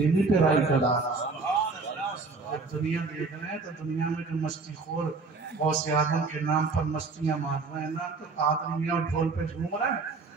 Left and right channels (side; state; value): left; quieter; 4.2 dB